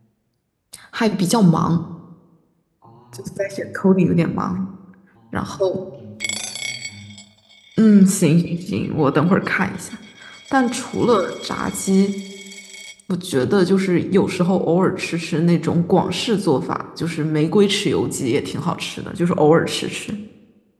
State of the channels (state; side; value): identical; both; correlation 1.00